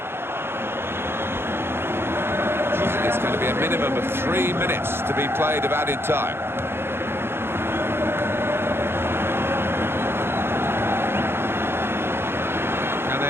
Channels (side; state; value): left; late; 0.11 ms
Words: It's going to be a minimum of 3 minutes to be played of added time.